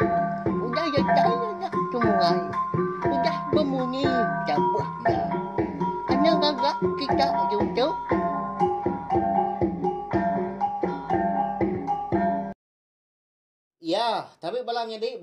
udah ya ya temuai, udah berbunyi cabutnya. Anak gagak kita YouTube. Ya, tapi balamnya di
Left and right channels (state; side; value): identical; both; correlation 1.00